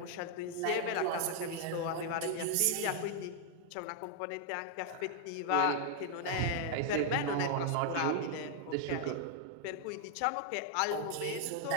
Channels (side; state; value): both; different; correlation 0.00